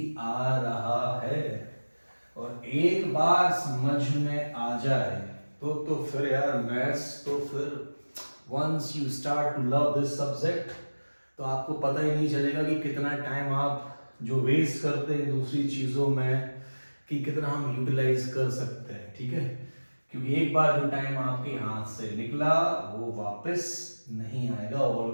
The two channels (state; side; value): inverted; both; correlation -1.00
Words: आ रहा है। और एक बार समझ में आ जाए तो फिर यार मैथ्स, तो फिर once you start to love this subject तो आपको पता ही नहीं चलेगा कि कितना टाइम आप जो वेस्ट करते हैं दूसरी चीज़ों में, कि कितना हम यूटिलाइज कर सकते हैं, ठीक है। क्योंकि एक बार जो टाइम आपके हाथ से निकला वो वापस नहीं आएगा।